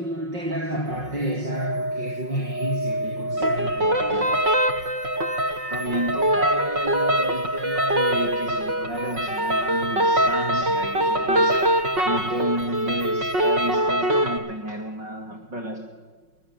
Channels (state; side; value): late; left; 5.5 ms